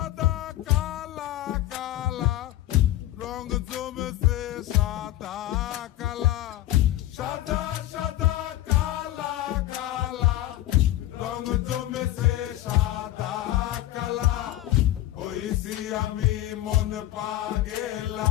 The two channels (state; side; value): quieter; right; 14.5 dB